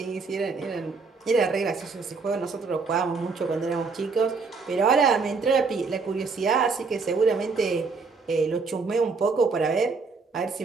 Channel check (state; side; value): quieter; left; 4.5 dB